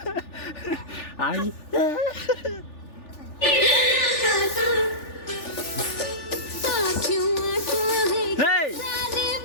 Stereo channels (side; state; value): right; late; 3.4 ms